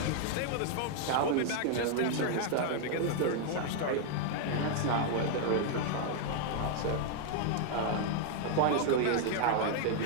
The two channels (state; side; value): different; both; correlation 0.00